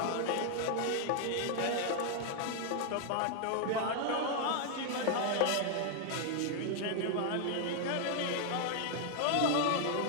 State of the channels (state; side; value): different; both; correlation 0.00